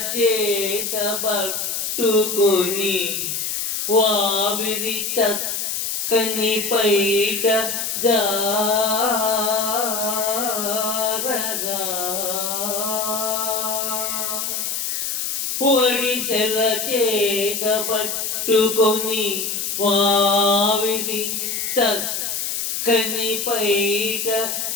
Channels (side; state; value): left; noise; hiss, 2 dB below the sound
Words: చేత పట్టుకొని వావిరి చక్కని పైట జారగా, ఒడిసెల చేత పట్టుకొని వావిరి చక్కని పైట